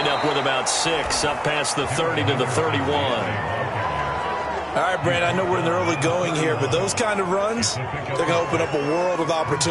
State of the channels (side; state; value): both; identical; correlation 1.00